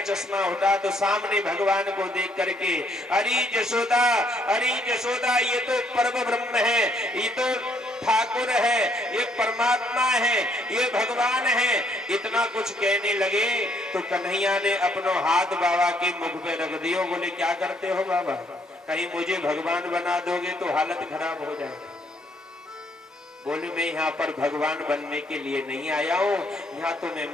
चश्मा होता तो सामने भगवान को देख करके अरे जसोदा ये तो परम ब्रह्म है, ये तो ठाकुर है, ये परमात्मा है, ये भगवान है, इतना कुछ कहने लगे तो कन्हैया ने अपनो हाथ बाबा के मुख पे रख दियो। बोले क्या करते हो बाबा, कहीं मुझे भगवान बना दोगे तो हालत खराब हो जाएगी। बोले मैं यहाँ पर भगवान बनने के लिए नहीं आया हूँ, यहाँ तो मैं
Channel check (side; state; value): both; normal; correlation 0.69